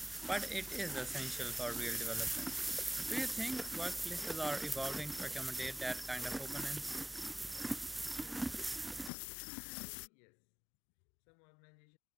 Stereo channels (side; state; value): right; drops out; at 9.1 s